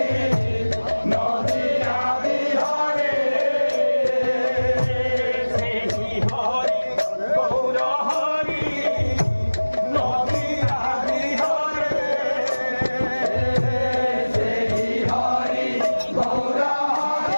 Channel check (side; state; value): both; inverted; correlation -1.00